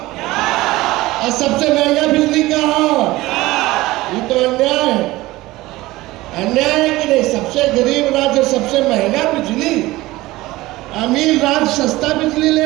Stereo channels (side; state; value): left; quieter; 18.8 dB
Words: और सबसे महंगा बिजली कहाँ? ये तो अन्याय है। अन्याय है कि नहीं? सबसे गरीब राज्य सबसे महंगा बिजली, अमीर राज्य सस्ता बिजली ले